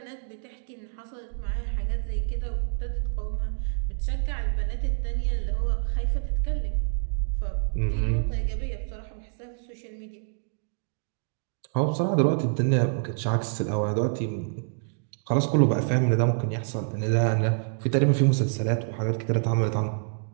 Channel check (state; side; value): silent; left; digital silence